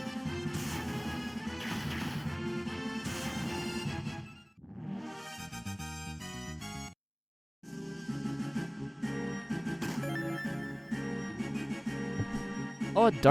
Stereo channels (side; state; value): both; identical; correlation 1.00